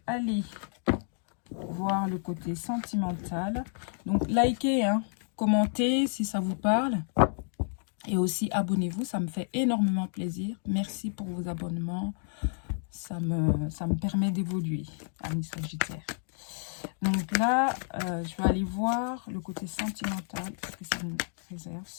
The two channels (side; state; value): right; silent; 58 dB below the other